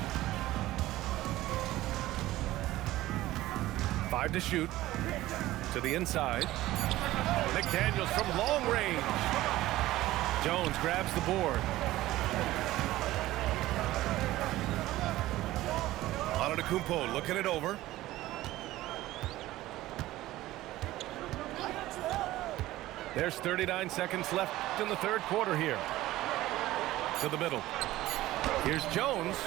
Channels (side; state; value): left; quieter; 16.2 dB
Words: Five to shoot. To the inside. McDaniels from long range. Jones grabs the board. Antetokounmpo looking it over. There's 39 seconds left in the third quarter here. To the middle. Here's Jones.